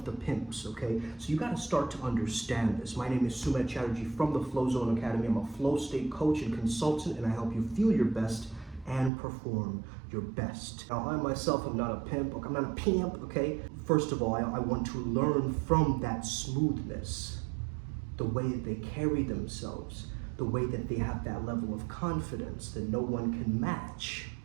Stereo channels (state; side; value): drops out; left; at 9.1 s